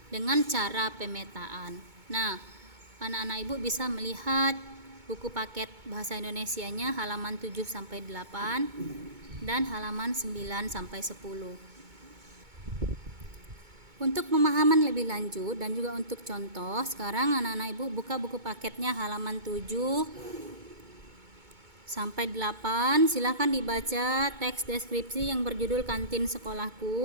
dengan cara pemetaan. Nah, anak-anak Ibu bisa melihat buku paket bahasa Indonesianya halaman 7 sampai 8 dan halaman 9 sampai 10. Untuk pemahaman lebih lanjut dan juga untuk contoh, sekarang anak-anak Ibu buka buku paketnya halaman 7 sampai 8. Silakan dibaca teks deskripsi yang berjudul Kantin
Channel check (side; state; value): left; late; 2.2 ms